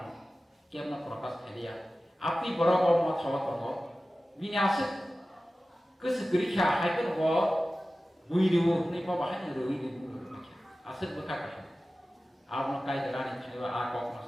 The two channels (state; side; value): normal; both; correlation 0.96